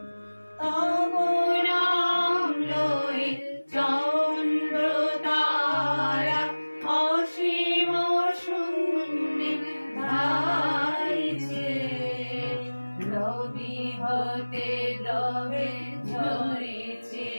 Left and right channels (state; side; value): inverted; both; correlation -1.00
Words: তব নাম লয়ে চন্দ্র তারা অসীম শূন্যে ধাইছে রবি হতে রবে ঝরেছে